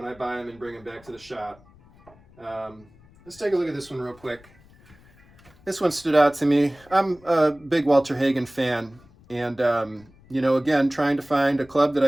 I buy them and bring them back to the shop. Let's take a look at this one real quick. This one stood out to me. I'm a big Walter Hagen fan, and you know, again, trying to find a club that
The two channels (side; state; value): left; noise; rumble, 27 dB below the sound